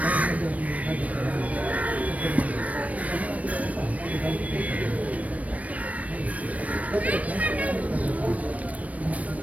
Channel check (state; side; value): late; left; 0.068 ms